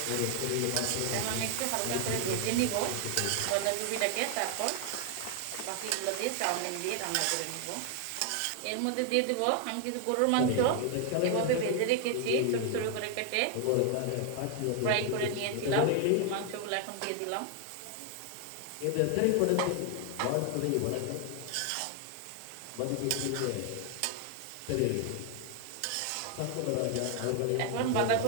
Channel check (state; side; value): different; both; correlation 0.00